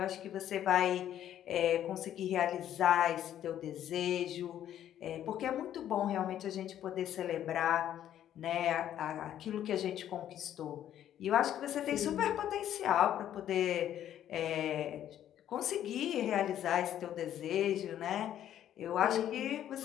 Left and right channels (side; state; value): right; quieter; 11.1 dB